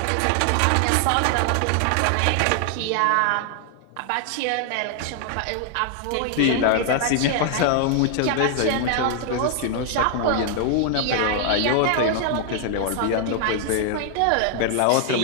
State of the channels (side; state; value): both; different; correlation 0.00